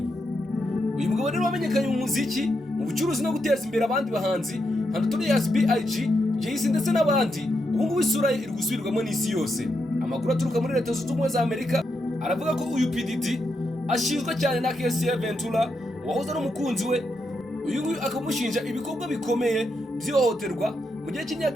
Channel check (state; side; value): normal; both; correlation 0.83